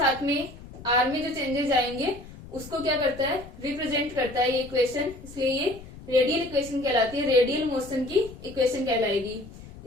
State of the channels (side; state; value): left; noise; rumble, 16 dB below the sound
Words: में आर में जो चेंजेस आएंगे उसको क्या करता है, रिप्रेजेंट करता है ये इक्वेशन, इसलिए ये रेडियल इक्वेशन कहलाती है, रेडियल मोशन की इक्वेशन कहलाएगी।